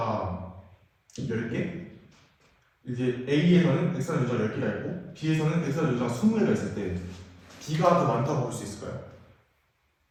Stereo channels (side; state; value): both; identical; correlation 1.00